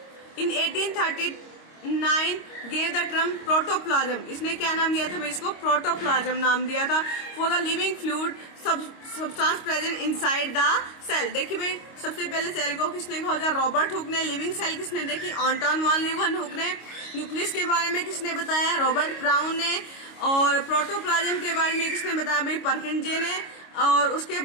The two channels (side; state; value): right; late; 25 ms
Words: इन 1839 गेव द टर्म प्रोटोप्लाज्म, इसने क्या नाम दिया था भाई, इसको प्रोटोप्लाज्म नाम दिया था, for the living fluid substance present inside the cell. देखिए भाई सबसे पहले सेल को किसने खोजा, रॉबर्ट हुक ने। लिविंग सेल किसने देखी, एंटोन वॉन लीeuwenhoek ने। न्यूक्लियस के बारे में किसने बताया, रॉबर्ट ब्राउन ने। और प्रोटोप्लाज्म के बारे में किसने बताया भाई, परकिंजे ने। और उसके